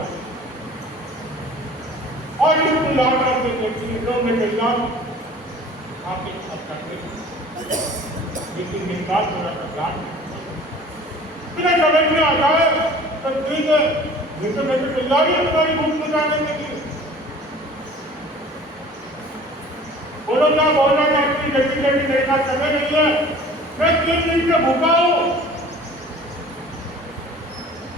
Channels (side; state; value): both; normal; correlation 0.46